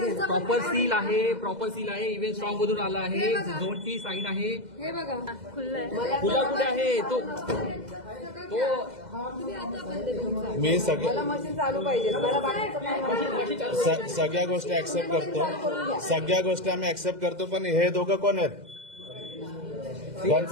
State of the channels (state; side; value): late; left; 2.0 ms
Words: प्रॉपर सील आहे इव्हेंट स्ट्रॉंग मधून आला आहे, झोनची साईन आहे. हे बघा खुल्लंय. खुला कुठे आहे तो मी मला मशीन चालू पाहिजे. मला बाकीचं काय माहिती. सगळ्या गोष्टी ऍक्सेप्ट करतो, सगळ्या गोष्टी आम्ही ऍक्सेप्ट करतो. पण हे दोघं कोण आहेत?